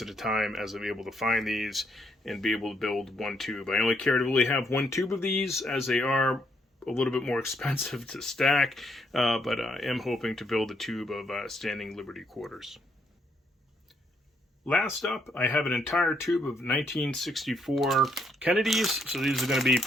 at a time as I'm able to find these and be able to build 1 tube. I only care to really have 1 tube of these, as they are a little bit more expensive to stack, but I am hoping to build a tube of Standing Liberty Quarters. Last up, I have an entire tube of 1964 Kennedys, so these are going to be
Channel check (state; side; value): normal; both; correlation 0.73